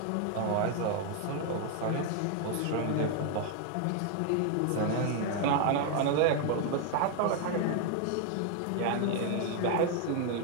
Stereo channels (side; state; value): both; different; correlation 0.00